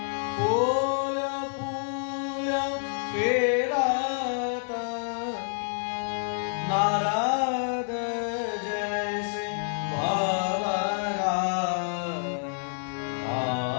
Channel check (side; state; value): right; silent; 59 dB below the other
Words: फूल फूल फेरत नारद जैसे भवरा